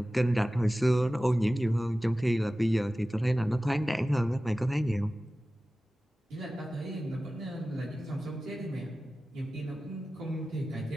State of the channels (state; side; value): normal; both; correlation 0.96